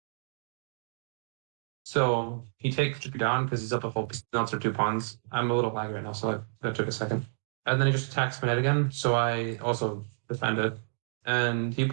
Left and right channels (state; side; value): silent; left; digital silence